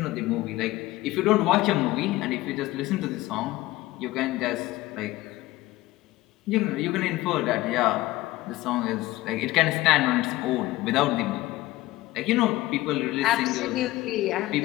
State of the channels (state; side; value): quieter; right; 17.9 dB